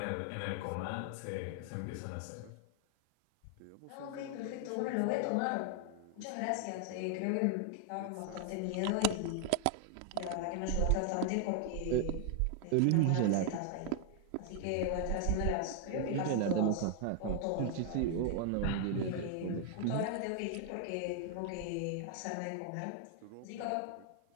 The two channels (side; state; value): both; different; correlation 0.00